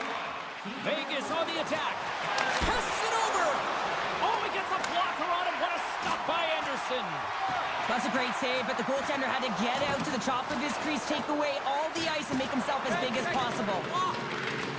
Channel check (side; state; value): both; identical; correlation 1.00